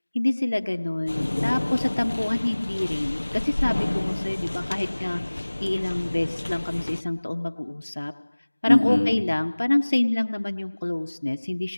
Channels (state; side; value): inverted; both; correlation -1.00